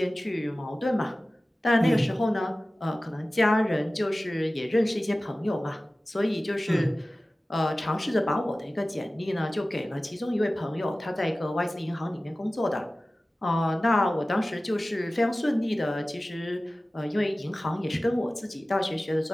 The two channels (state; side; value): normal; both; correlation 0.97